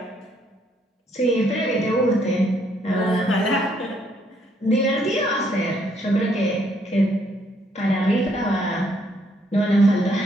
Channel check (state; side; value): normal; both; correlation 0.70